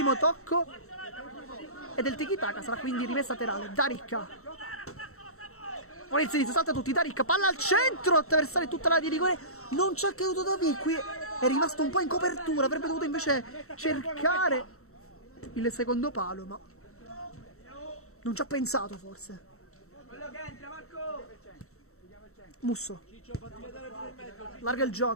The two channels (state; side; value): late; right; 0.63 ms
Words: tocco è del tiki-taka, sarà quindi rimessa laterale. D'Aricca, ora il sinistro, salta tutti, D'Aricca, palla al centro, attraversare tutta la di rigore, non ci ha creduto Davi, qui è rimasto un po' in copertura, avrebbe dovuto invece cercare il secondo palo, ma non ci ha pensato forse. Musso, larga il